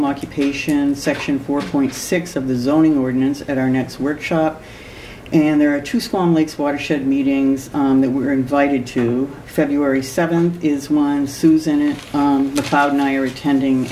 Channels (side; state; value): both; identical; correlation 1.00